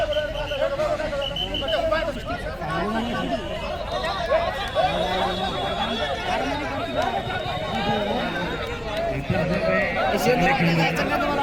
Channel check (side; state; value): both; identical; correlation 1.00